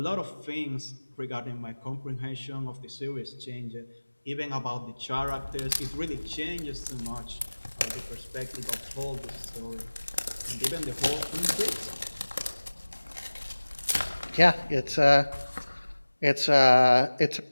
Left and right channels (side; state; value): both; inverted; correlation -1.00